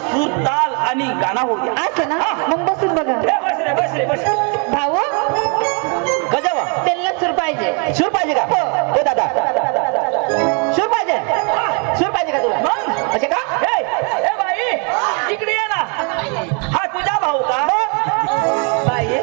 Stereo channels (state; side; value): quieter; left; 36.5 dB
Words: सूर ताल आणि गाणं होऊ द्या. असं ना. मग बसून बघा. बस रे. भाऊ गजावा त्यांना सूर पाहिजे. सूर पाहिजे का? हो दादा सूर पाहिजे का तुला? असे का? ए बाई इकडे ये ना. हा तुझा भाऊ का? बाई